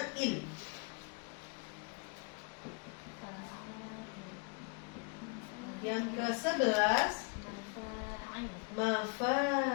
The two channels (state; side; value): quieter; right; 32.9 dB